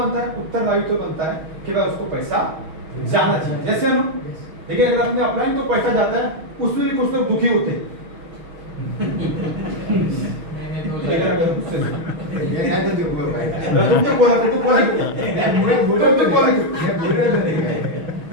है? उत्तरदायित्व बनता है कि भाई उसको पैसा जाना चाहिए। जैसे ना? लेकिन अगर अपने अपलाइन को पैसा जाता है, उसमें भी कुछ लोग दुखी होते हैं।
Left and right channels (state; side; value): late; left; 6.3 ms